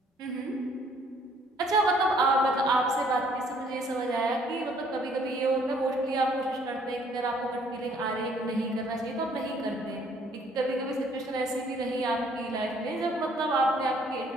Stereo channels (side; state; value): both; normal; correlation 0.62